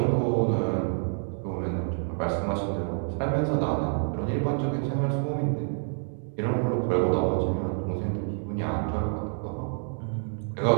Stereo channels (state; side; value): silent; left; digital silence